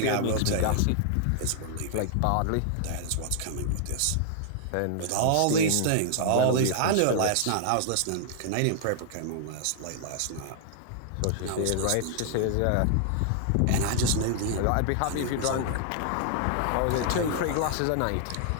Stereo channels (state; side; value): different; both; correlation -0.01